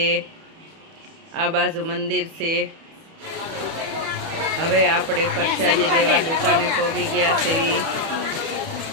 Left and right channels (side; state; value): left; late; 31 ms